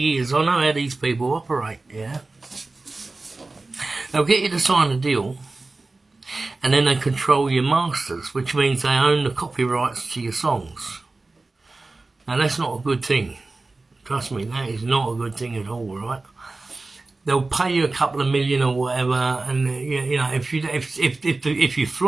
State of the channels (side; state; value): left; quieter; 3.4 dB